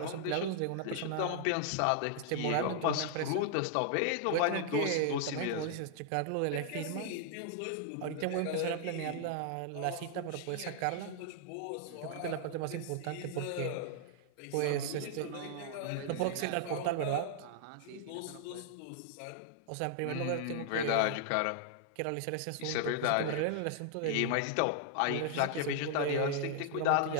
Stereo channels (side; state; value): both; different; correlation -0.01